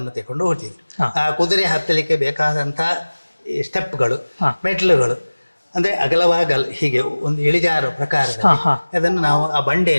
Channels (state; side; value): inverted; both; correlation -1.00